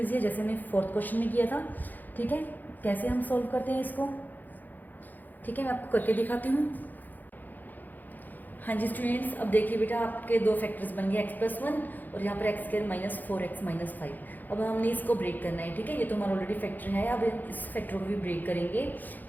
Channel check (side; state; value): right; late; 0.085 ms